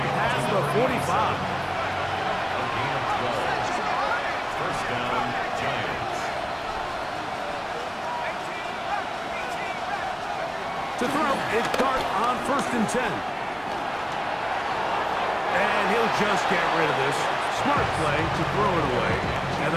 past the 45. First down, Giants. To throw is Dart on 1st and 10. And he'll just get rid of this. Smart play to throw it away. And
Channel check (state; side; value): identical; both; correlation 1.00